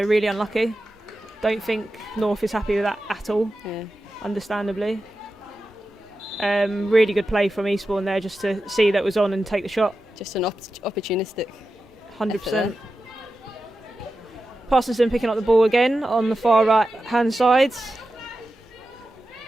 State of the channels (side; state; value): both; normal; correlation 0.92